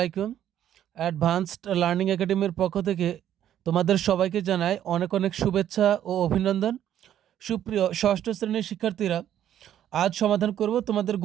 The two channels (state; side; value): quieter; left; 10.9 dB